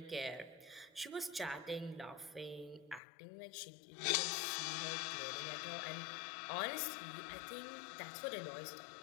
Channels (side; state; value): right; drops out; at 3.0 s